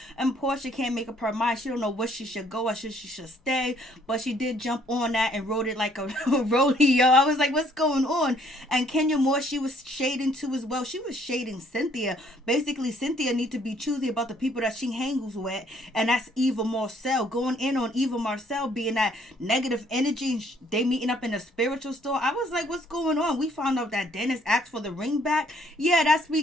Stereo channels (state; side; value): normal; both; correlation 0.64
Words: And Porsha can't make up her mind. She don't know where she should go or she should stay, but she did jump on that and rode it like a rodeo. I was like, what's going on? And Kenya Moore, she was shading too as well. She was shading Cynthia. Basically, Cynthia need to be choosy about the people that she hangs with, and that's Eva Marcille. Going in on Eva Marcille being that negative energy. They meeting up in a spiritual store. I was like, what's going on? We found out that Dennis asked for the ring back. Yeah, that's